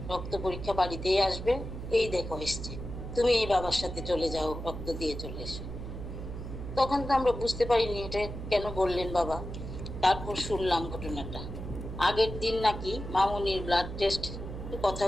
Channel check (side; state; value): right; noise; hum, 8 dB below the sound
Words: রক্ত পরীক্ষা বাড়িতেই আসবে, এই দেখো এসছে, তুমি এই বাবার সাথে চলে যাও, রক্ত দিয়ে চলে এসো। তখন তো আমরা বুঝতে পারিনি এটা কেন বললেন বাবা। তারপর শুনলাম ঘটনাটা। আগের দিন নাকি মামুনির ব্লাড টেস্ট কথা